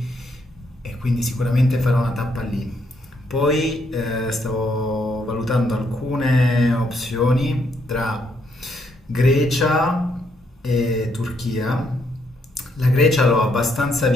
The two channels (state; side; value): normal; both; correlation 0.74